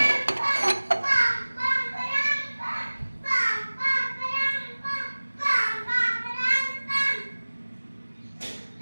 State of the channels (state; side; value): inverted; both; correlation -1.00